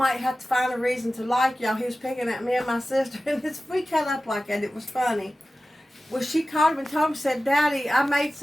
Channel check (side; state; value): both; normal; correlation 0.95